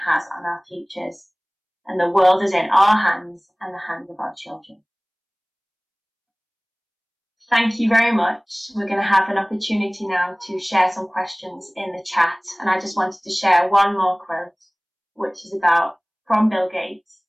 on our futures. And the world is in our hands and the hands of our children. Thank you very much. We're going to have an opportunity now to share some questions in the chat. And I just wanted to share one more quote, which is from Bill Gates,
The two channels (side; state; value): both; identical; correlation 1.00